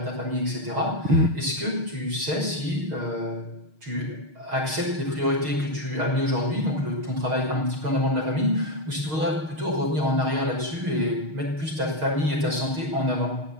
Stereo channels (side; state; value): left; late; 6.4 ms